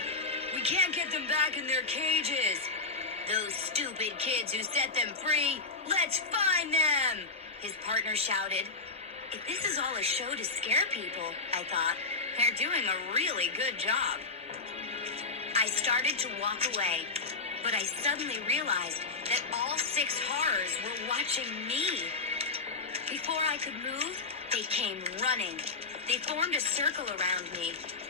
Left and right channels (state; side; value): quieter; right; 3.8 dB